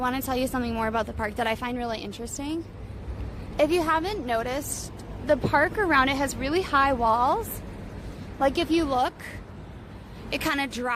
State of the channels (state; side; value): identical; both; correlation 1.00